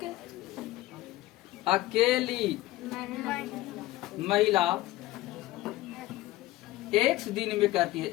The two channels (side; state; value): right; quieter; 16.8 dB